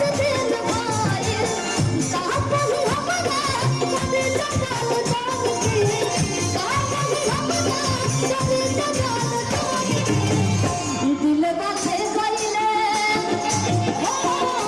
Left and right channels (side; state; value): left; noise; hum, 28 dB below the sound